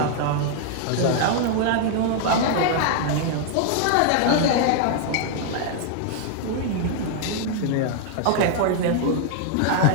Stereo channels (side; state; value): both; different; correlation 0.00